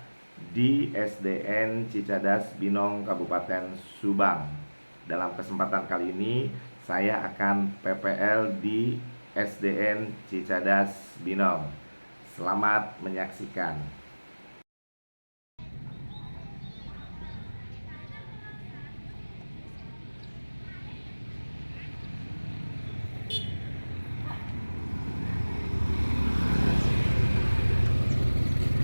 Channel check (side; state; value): both; inverted; correlation -1.00